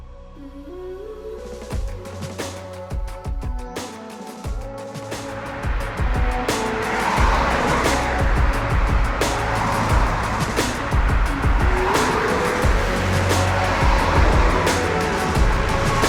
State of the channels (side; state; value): both; identical; correlation 1.00